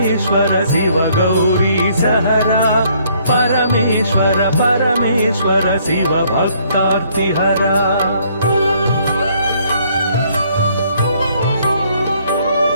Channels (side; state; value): both; inverted; correlation -0.65